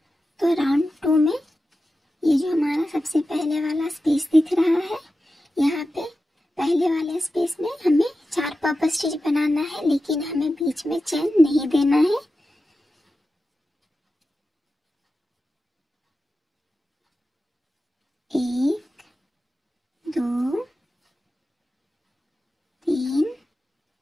तो राउंड 2 में ये जो हमारा सबसे पहले वाला स्पेस दिख रहा है, यहाँ पे पहले वाले स्पेस में हमें 4 पफ स्टिच बनाना है, लेकिन हमें बीच में चेन नहीं देना है। एक, 2, 3,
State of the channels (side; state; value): both; normal; correlation 0.92